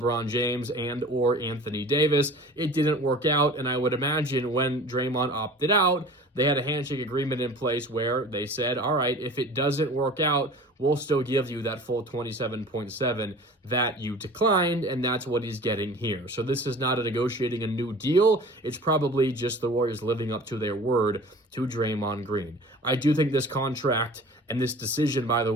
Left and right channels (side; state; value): both; normal; correlation 0.42